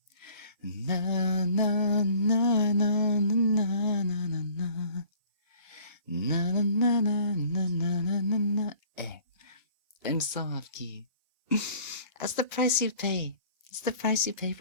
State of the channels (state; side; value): inverted; both; correlation -0.51